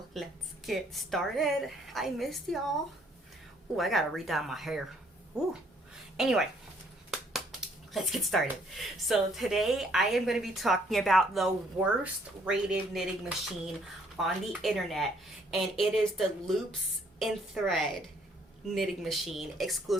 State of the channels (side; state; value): both; normal; correlation 0.65